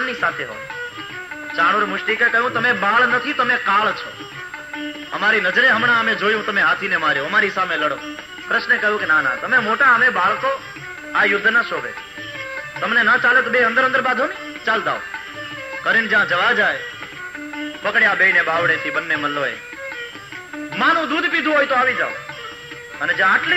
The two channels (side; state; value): both; identical; correlation 1.00